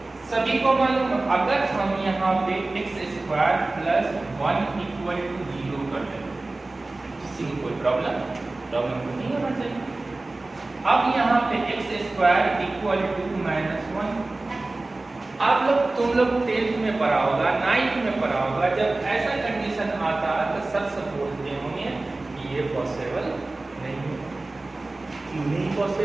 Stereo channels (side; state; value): left; quieter; 3.1 dB